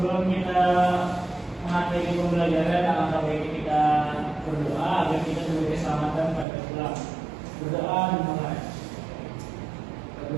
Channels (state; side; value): drops out; left; at 6.5 s